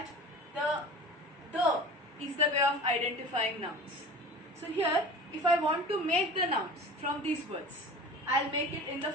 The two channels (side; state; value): both; normal; correlation 0.37